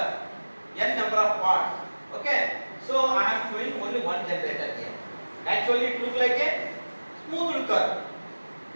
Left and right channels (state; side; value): inverted; both; correlation -1.00